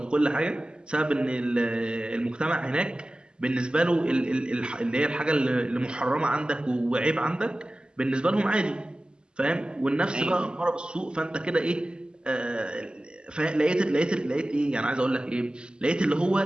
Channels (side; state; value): left; late; 0.050 ms